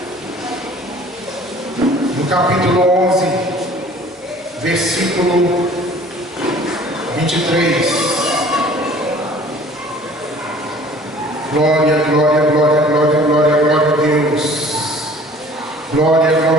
no capítulo 11, versículo 23. Glória, glória, glória, glória, glória, glória a Deus. Glória,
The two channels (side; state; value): both; normal; correlation 0.50